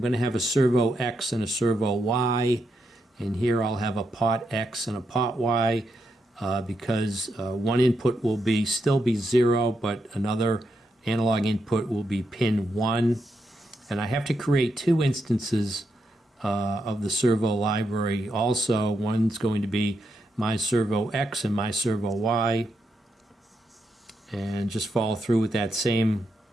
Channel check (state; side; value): normal; both; correlation 0.82